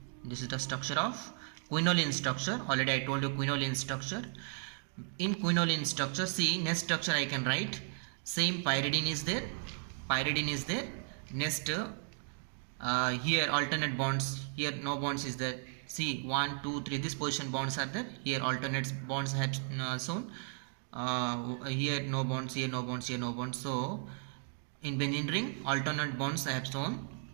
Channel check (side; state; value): left; silent; 54 dB below the other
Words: Already I told you quinoline structure. In quinoline structure, see, next structure I can write. Same pyridine is there. Next, here alternate bonds. Here no bonds is there. See, 1 2 3. This position bonds are there. Here alternate bonds have shown. Here no bonds, here no bonds, here no bonds. So in benzene ring alternate bonds I have shown.